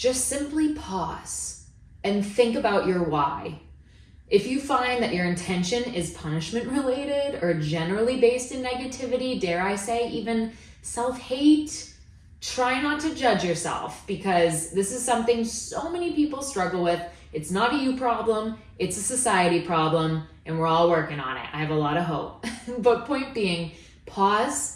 simply pause and think about your why. If you find that your intention is punishment related or generally based in negativity, dare I say even self-hate, try not to judge yourself, because this is something so many people struggle with. It's not a you problem, it's a society problem, and we're all working on it. I have a lot of hope. But point being,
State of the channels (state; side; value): identical; both; correlation 1.00